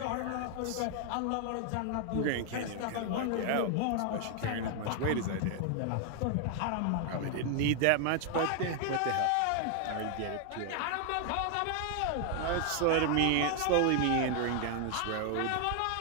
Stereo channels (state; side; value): different; both; correlation 0.00